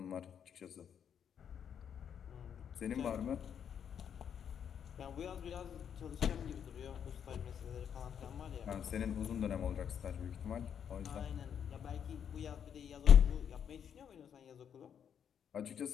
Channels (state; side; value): quieter; right; 8.3 dB